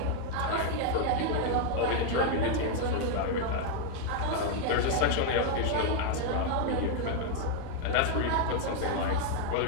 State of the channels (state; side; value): different; both; correlation 0.00